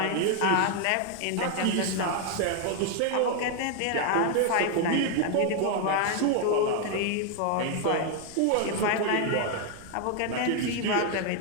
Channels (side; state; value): both; different; correlation 0.00